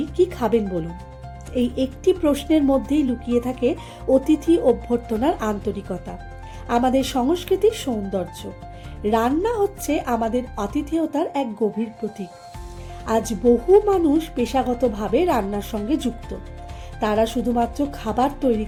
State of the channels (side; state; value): both; identical; correlation 1.00